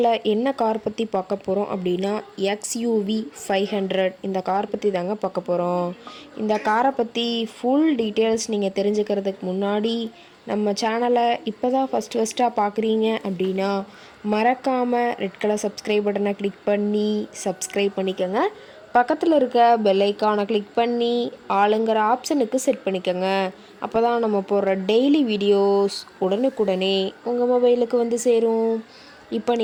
என்ன கார் பற்றி பார்க்க போகிறோம் அப்படின்னா XUV 500 இந்த கார் பற்றி தாங்க பார்க்க போகிறோம். இந்த காரை பற்றி ஃபுல் டீட்டெயில்ஸ் நீங்கள் தெரிஞ்சுக்கிறதுக்கு முன்னாடி நம்ம சேனலை இப்போ தான் ஃபஸ்ட்டாக பார்க்குறீங்க அப்படின்னா மறக்காமல் ரெட் கலர் சப்ஸ்கிரைப் பட்டனை கிளிக் பண்ணி சப்ஸ்கிரைப் பண்ணிக்கோங்க. பக்கத்தில் இருக்க பெல் ஐக்கானை கிளிக் பண்ணி ஆளுங்கிற ஆப்ஷனுக்கு செட் பண்ணிக்கோங்க. அப்போ தான் நம்ம போடுற டெய்லி வீடியோஸ் உடனுக்குடனே உங்கள் மொபைலுக்கு வந்து சேரும். இப்போ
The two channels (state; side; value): identical; both; correlation 1.00